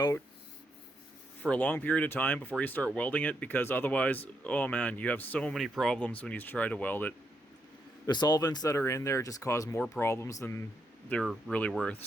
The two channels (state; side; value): normal; both; correlation 0.80